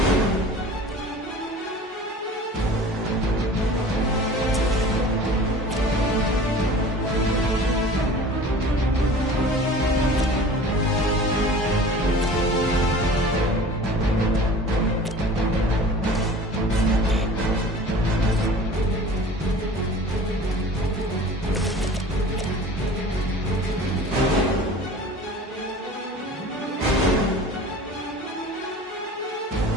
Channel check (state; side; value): normal; both; correlation 0.42